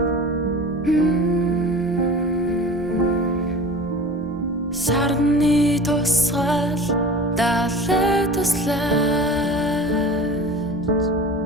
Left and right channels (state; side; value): normal; both; correlation 0.37